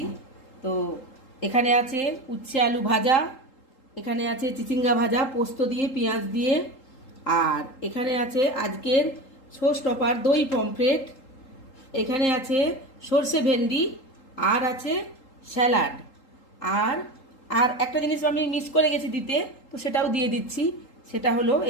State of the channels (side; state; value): right; late; 3.8 ms